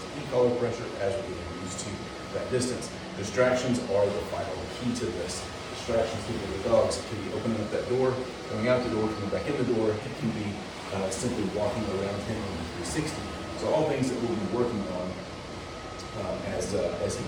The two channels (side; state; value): both; identical; correlation 1.00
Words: e-collar pressure as we get used to that distance. Distractions are the final key to this. Distractions to the dogs can be opening up that door, coming out the door, coming back in the door. It can be simply walking around him in 360. So all things that we'll be working on as he